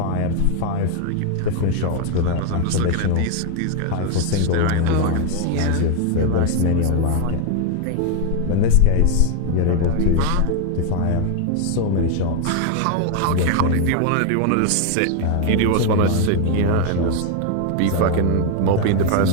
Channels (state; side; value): different; both; correlation 0.00